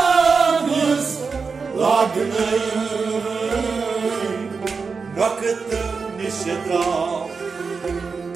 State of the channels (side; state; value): left; quieter; 5.0 dB